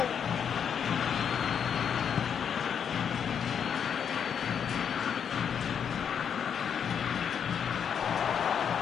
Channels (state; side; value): quieter; right; 7.7 dB